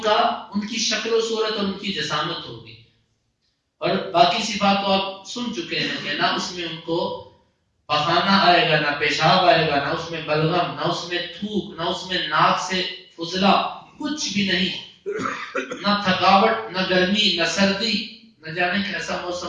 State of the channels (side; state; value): both; identical; correlation 1.00